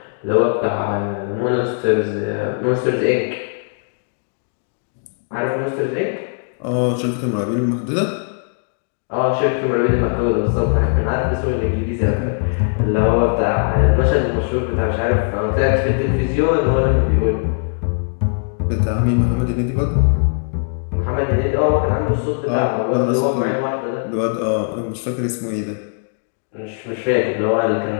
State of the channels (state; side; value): silent; right; digital silence